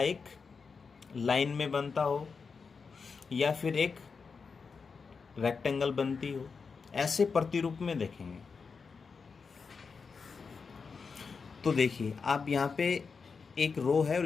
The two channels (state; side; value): quieter; right; 5.2 dB